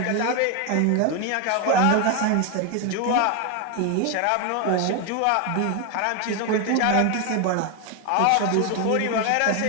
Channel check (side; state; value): both; different; correlation 0.01